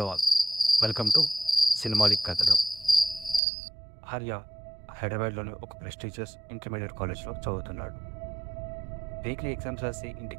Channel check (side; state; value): left; drops out; at 3.4 s